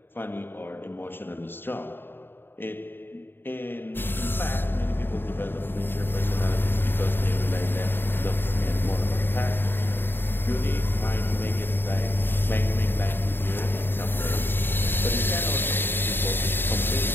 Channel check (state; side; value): late; right; 0.10 ms